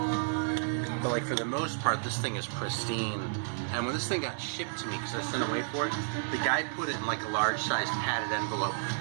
But like for the most part, this thing is pristine. And when this thing got shipped to me, because I sent away for it, the guy put it in like a large-sized padded envelope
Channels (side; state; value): left; silent; digital silence